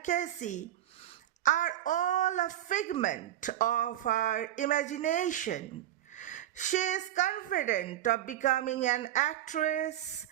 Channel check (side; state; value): left; quieter; 12.8 dB